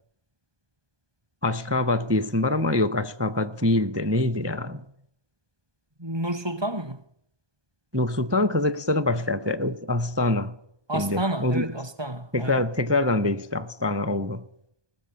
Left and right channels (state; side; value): late; left; 1.2 ms